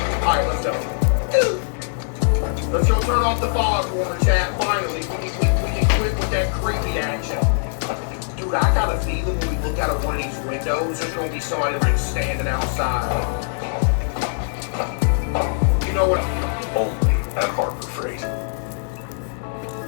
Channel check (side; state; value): right; silent; digital silence